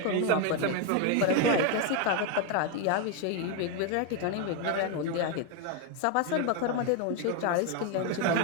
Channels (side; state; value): both; different; correlation 0.01